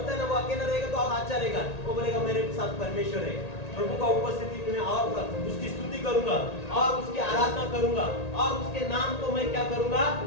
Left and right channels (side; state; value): right; late; 1.8 ms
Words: है ना, वो अकेला रहेगा तो और अच्छा रहेगा। वो बोलेगा मेरे साथ परमेश्वर है, प्रभु का उपस्थिति में और उसकी स्तुति करूंगा और उसकी आराधना करूंगा और उसके नाम को मैं क्या करूंगा,